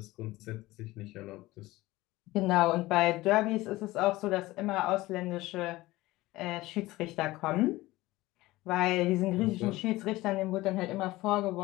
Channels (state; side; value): quieter; right; 18.7 dB